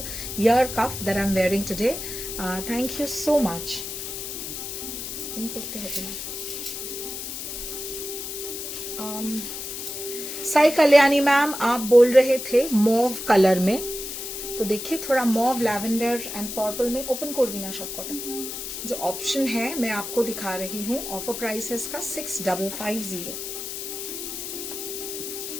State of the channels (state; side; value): noise; left; hiss, 7 dB below the sound